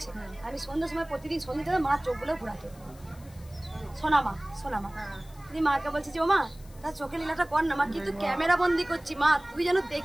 আমি সন্ধ্যার সময় প্রতিদিন সন্ধ্যে মা চোখগুলো ঘুরাতে, শোনা মা দিয়ে মাকে বলছি যে ও মা তার চোখে লীলাটা কর না মা, কিন্তু ক্যামেরা বন্দি করছি মা, তুই যেন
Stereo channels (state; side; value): noise; left; hiss, 25 dB below the sound